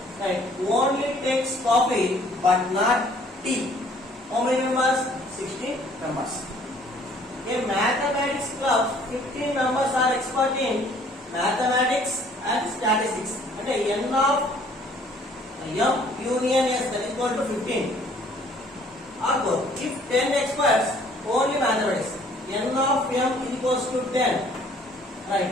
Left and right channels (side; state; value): both; normal; correlation 0.58